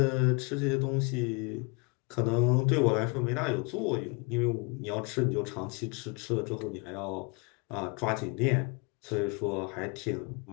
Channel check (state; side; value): quieter; right; 31.5 dB